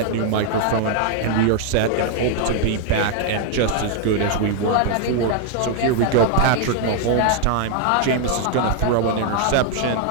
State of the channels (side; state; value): both; different; correlation 0.00